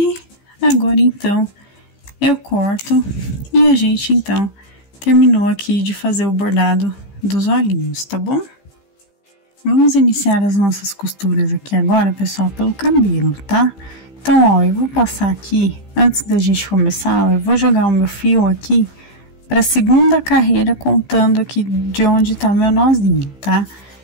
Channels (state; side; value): late; right; 15 ms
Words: agora, então, eu corto e a gente, então, terminou aqui de fazer o bordado dos olhinhos, tá bom? Vamos iniciar as nossas costuras aqui agora, pessoal, pelo cabelo, tá? Então, ó, eu vou passar aqui, antes da gente começar, ó, eu vou jogar o meu fio aqui para a 2ª carreira, contando aqui de onde tá meu nozinho, tá?